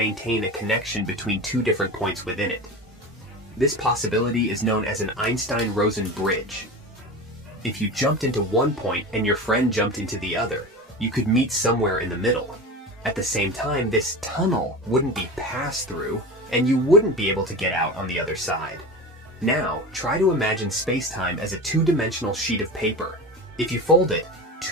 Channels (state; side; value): normal; both; correlation 0.29